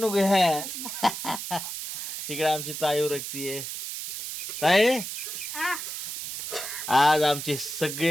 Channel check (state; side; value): noise; right; hiss, 6 dB below the sound